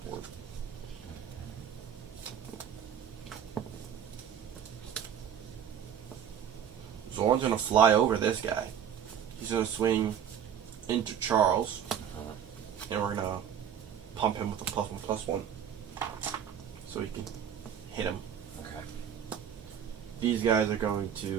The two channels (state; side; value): quieter; left; 8.7 dB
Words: board. Zorn's gonna fly over this guy. He's gonna swing into Charles. And we're gonna pump him with a +1/+1. So he can hit him. Okay. These guys are going